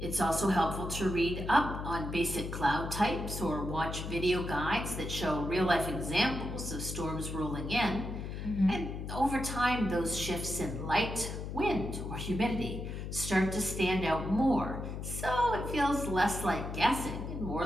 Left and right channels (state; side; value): noise; left; hum, 6 dB below the sound